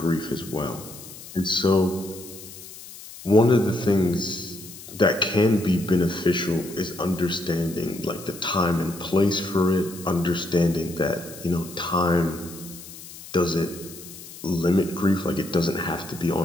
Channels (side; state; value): left; noise; hiss, 15 dB below the sound